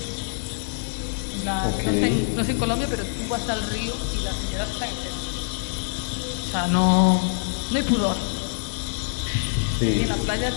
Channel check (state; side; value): silent; right; 60 dB below the other